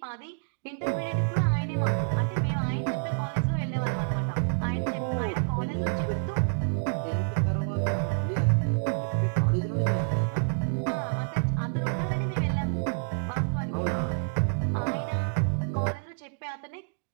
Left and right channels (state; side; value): silent; left; 59 dB below the other